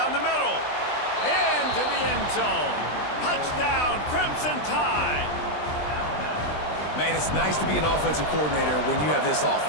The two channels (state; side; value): late; right; 20 ms